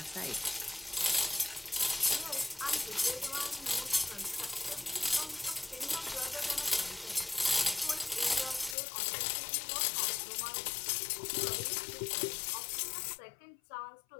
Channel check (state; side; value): drops out; right; at 8.8 s